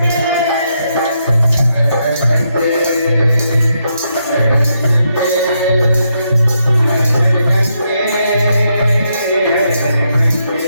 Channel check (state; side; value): inverted; both; correlation -0.80